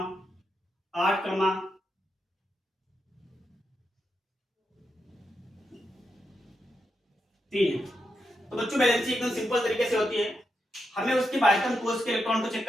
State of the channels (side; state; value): both; normal; correlation 0.85